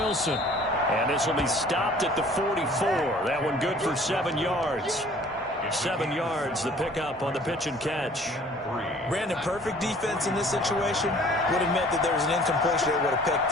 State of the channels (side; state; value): both; normal; correlation 0.52